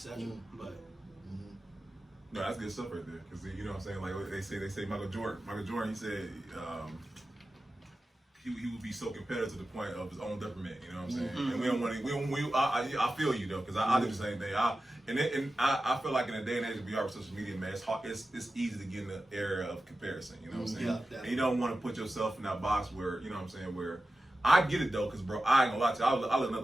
But no, that's good stuff right there. Cause you know what I'm saying. Like they say Michael Jordan. He said he would be so competitive to the point of his own detriment. You know what I'm saying. And we don't want to. I feel you though, cause I do the same thing. I feel like in the day and age we are with social media, man, it's easy to get in the area of comparison. You know what I'm saying. Yeah, and you don't want to put yourself in that box where you know what I'm saying where. I get it though, cause bro, I ain't gonna lie to you. I listen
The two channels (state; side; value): normal; both; correlation 0.93